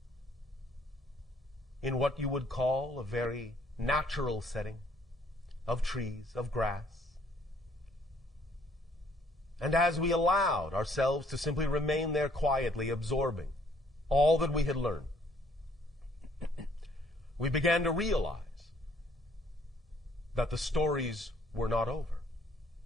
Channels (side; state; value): both; normal; correlation 0.63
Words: in what you would call a very natural setting of trees, of grass. And as we allowed ourselves to simply remain there quietly, absorbing all that we had learned, we began to realize that the stories were not over.